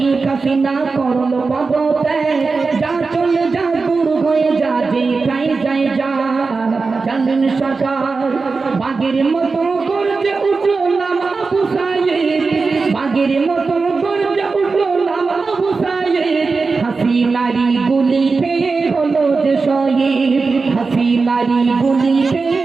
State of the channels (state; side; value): quieter; left; 4.3 dB